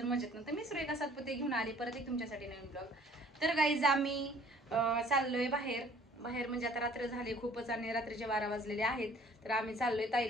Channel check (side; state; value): both; normal; correlation 0.54